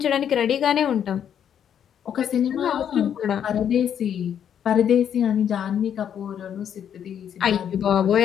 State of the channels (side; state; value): right; quieter; 9.0 dB